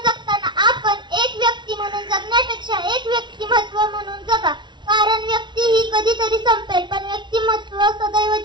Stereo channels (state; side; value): late; left; 0.22 ms